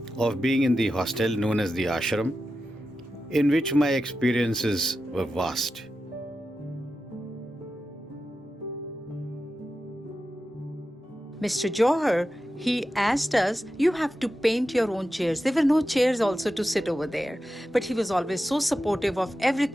of being in the hostel known as the ashram, in which my experiences were vast. Mr. Johar, he asked us, you have to paint your own chairs. There were no chairs also to sit over there. But he was always so supportive of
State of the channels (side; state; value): both; normal; correlation 0.91